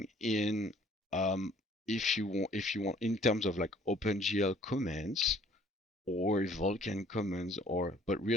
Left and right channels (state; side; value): normal; both; correlation 0.56